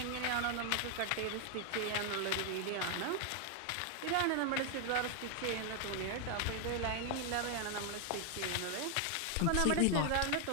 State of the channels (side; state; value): both; different; correlation 0.00